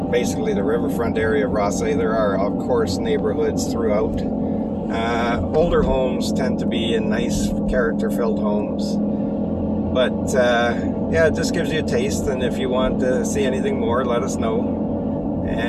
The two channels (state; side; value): identical; both; correlation 1.00